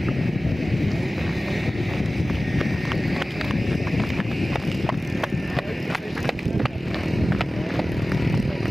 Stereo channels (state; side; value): normal; both; correlation 0.97